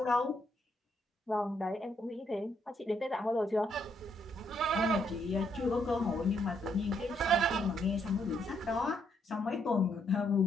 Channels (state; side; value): normal; both; correlation 0.74